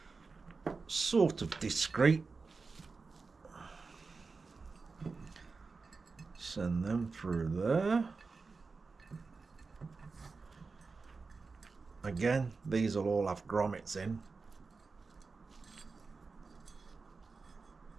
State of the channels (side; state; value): left; quieter; 4.3 dB